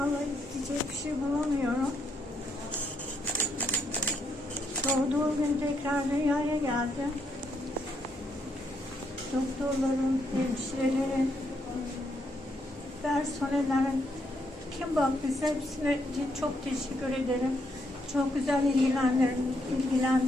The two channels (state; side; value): normal; both; correlation 0.76